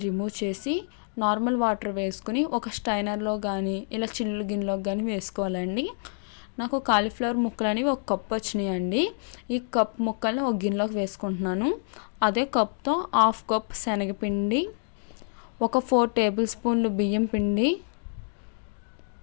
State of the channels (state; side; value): silent; right; 60 dB below the other